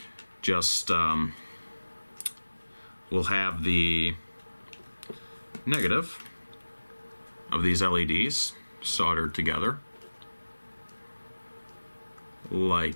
Just, we'll have the negative of these LEDs soldered together.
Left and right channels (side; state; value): both; inverted; correlation -1.00